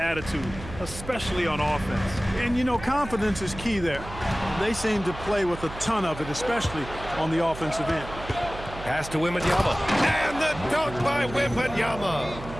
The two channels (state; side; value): noise; right; hum, 12 dB below the sound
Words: especially on offense. And, you know, confidence is key there. They seem to play with a ton of it, especially on the offensive end. Pass to Wembanyama. And the dunk by